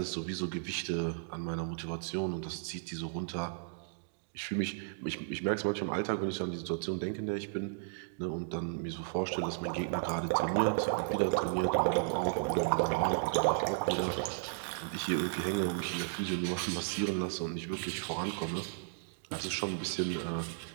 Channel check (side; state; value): left; silent; digital silence